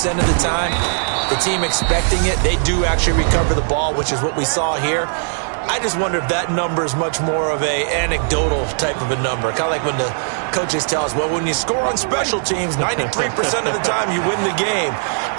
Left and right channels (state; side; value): silent; left; digital silence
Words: of the time, the team expecting it, they do actually recover the ball, which is what we saw here. I just wonder if that number is much more of a anecdotal type of a number. Kind of like when the coaches tell us, well, when you score on special teams, 93% of the time you win the game.